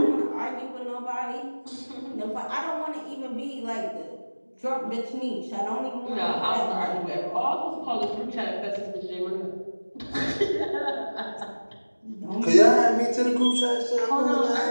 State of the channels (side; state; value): both; inverted; correlation -1.00